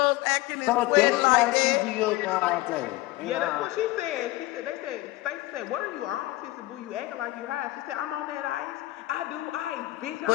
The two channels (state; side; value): quieter; right; 18.5 dB